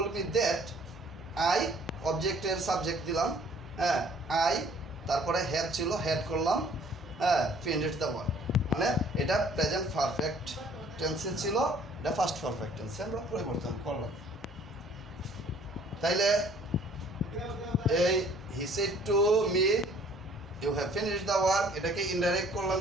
মি দ্যাট আই, অবজেক্টের সাবজেক্ট দিলাম, হ্যাঁ আই, তারপরে হ্যাড ছিল, হ্যাড করলাম, হ্যাঁ ফিনিশড দ্য ওয়ার্ক। মানে এটা প্রেজেন্ট পারফেক্ট টেন্সে ছিল, এটা ফার্স্ট পারফেক্ট টেন্সে আমরা পরিবর্তন করলাম। তাইলে এই he said to me you have finished the work, এটাকে ইনডাইরেক্ট করলাম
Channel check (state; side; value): normal; both; correlation 0.57